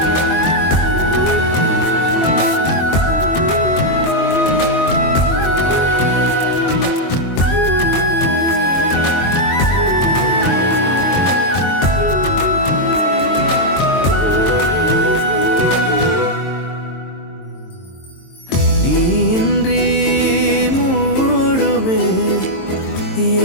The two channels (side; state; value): right; late; 22 ms